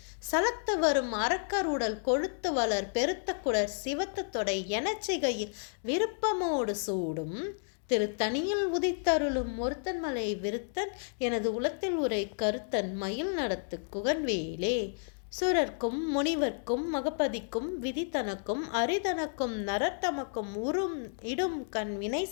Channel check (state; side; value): silent; right; digital silence